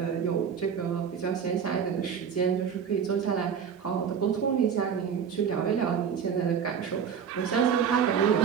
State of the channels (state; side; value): quieter; left; 7.3 dB